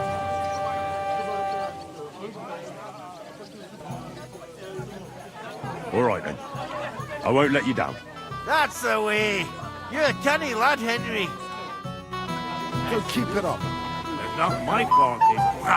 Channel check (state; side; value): identical; both; correlation 1.00